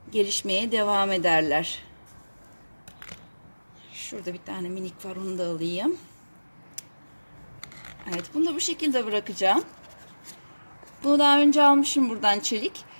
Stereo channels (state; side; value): inverted; both; correlation -1.00